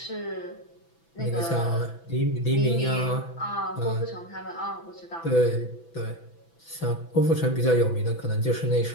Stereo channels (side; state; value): right; late; 6.0 ms